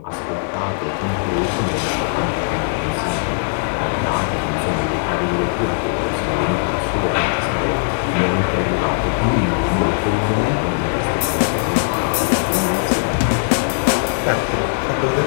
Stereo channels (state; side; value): silent; right; digital silence